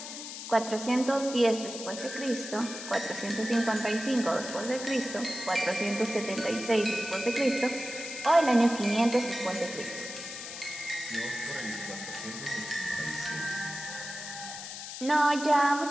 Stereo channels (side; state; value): left; noise; hiss, 9 dB below the sound